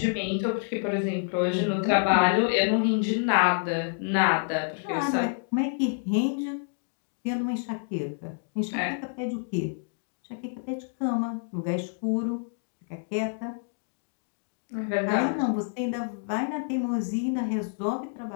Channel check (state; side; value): silent; right; digital silence